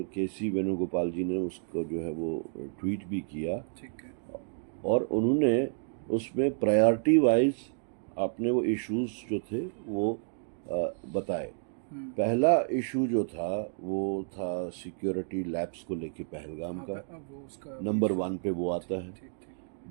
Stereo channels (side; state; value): left; silent; digital silence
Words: केसी वेणुगोपाल जी ने उसको जो है वो ट्वीट भी किया, ठीक है। और उन्होंने उसमें प्रायोरिटी वाइज अपने वो इश्यूज जो थे वो बताए। पहला इशू जो था वो था सिक्योरिटी लैब्स को लेके पहलगाम का, वो उसका नंबर 1 पे वो आता है। ठीक